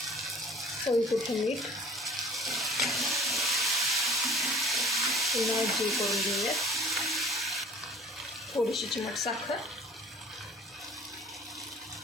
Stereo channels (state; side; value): normal; both; correlation 0.49